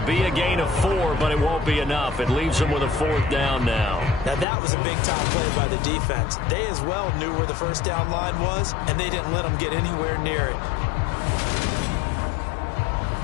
be a gain of 4, but it won't be enough. It leaves them with a 4th down now. Now, that was a big-time play by the defense. They as well knew where the 1st down line was, and they didn't let them get anywhere near it.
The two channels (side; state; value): right; drops out; at 4.5 s